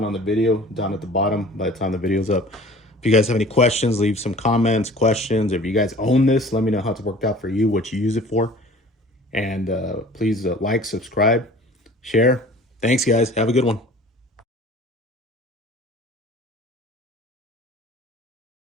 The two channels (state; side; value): normal; both; correlation 0.46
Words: the video down at the bottom by the time the video's up. If you guys have any questions, leave some comments, questions. If you guys own this, let me know how it's worked out for you, what you use it for. And please like, subscribe, share. Thanks, guys. Have a good one.